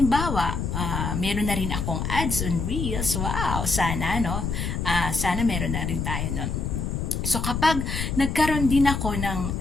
meron na rin akong ads on Reels. Wow, sana, no? Sana meron na rin tayo nun. So, kapag nagkaroon din ako ng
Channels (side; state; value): left; noise; rumble, 2 dB below the sound